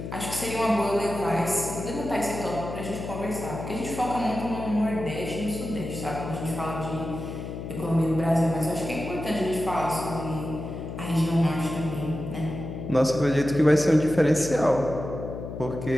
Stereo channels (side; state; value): left; noise; hum, 8 dB below the sound